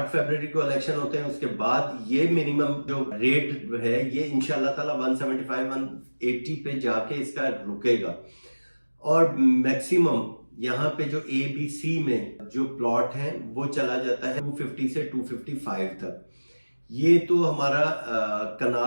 फरवरी को इलेक्शन होते हैं उसके बाद ये मिनिमम जो रेट है ये इंशाल्लाह ताला 175 180 पे जाके इसका रुकेगा। और मैक्सिमम यहाँ पे जो ए बी सी में जो प्लॉट है वो चला जाता है 250 से 255 तक। ये तो हमारा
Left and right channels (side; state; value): both; inverted; correlation -1.00